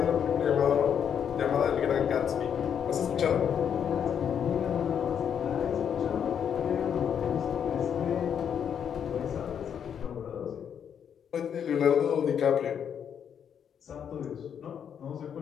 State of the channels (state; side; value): quieter; right; 8.2 dB